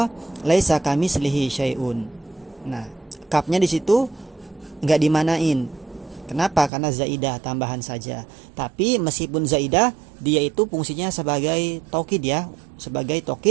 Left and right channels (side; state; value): left; drops out; at 6.7 s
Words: laisa kamislihi syai'un. Nah, kapnya di situ enggak dimanain. Kenapa? Karena zaidah tambahan saja. Tapi meskipun zaidah, dia itu fungsinya sebagai taukid ya, sebagai